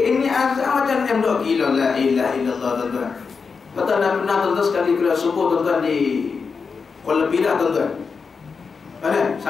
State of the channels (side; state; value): right; quieter; 5.2 dB